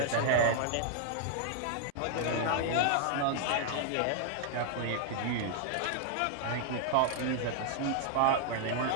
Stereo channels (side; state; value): both; different; correlation 0.00